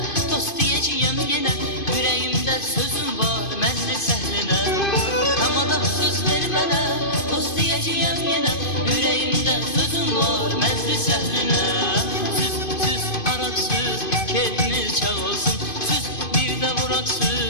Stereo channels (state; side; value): late; right; 2.5 ms